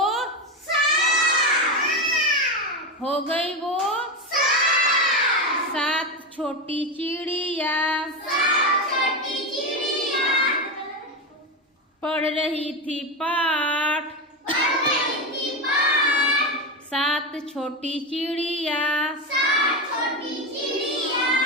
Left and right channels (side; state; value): both; normal; correlation 0.15